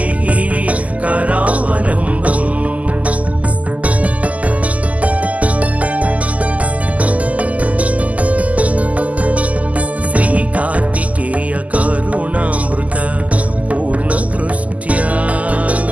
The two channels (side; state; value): left; late; 0.073 ms